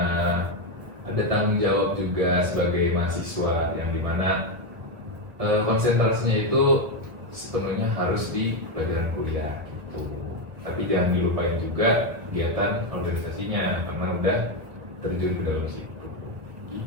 ada tanggung jawab juga sebagai mahasiswa yang dimana konsentrasinya itu sepenuhnya harus di pelajaran kuliah gitu. Tapi jangan dilupain juga kegiatan organisasinya karena udah terjun ke dalam situ.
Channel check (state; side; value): late; left; 1.3 ms